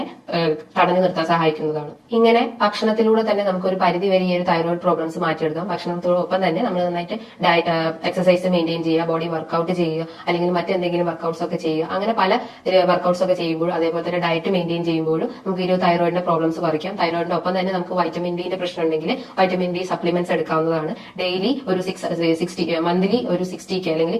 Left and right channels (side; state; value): both; identical; correlation 1.00